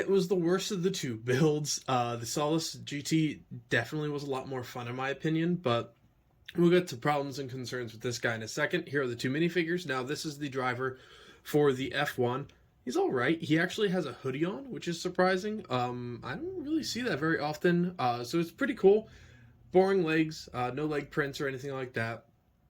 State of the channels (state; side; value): identical; both; correlation 1.00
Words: was the worst of the two builds. The Solus GT definitely was a lot more fun in my opinion, but we'll get to problems and concerns with this guy in a second. Here are the two minifigures. Now, this is the driver for the F1. He's all right. He actually has a hoodie on, which is surprising. I don't really see that very often, so it's pretty cool. Boring legs, no leg prints or anything like that.